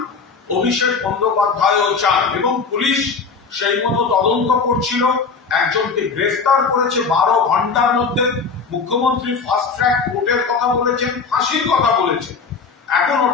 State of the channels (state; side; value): quieter; right; 5.0 dB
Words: অভিষেক বন্দ্যোপাধ্যায়ও চান, এবং পুলিশ সেই মতো তদন্ত করছিল, একজনকে গ্রেফতার করেছে 12 ঘন্টার মধ্যে। মুখ্যমন্ত্রী ফাস্ট ট্র্যাক কোর্টের কথা বলেছেন, ফাঁসির কথা বলেছেন, এখন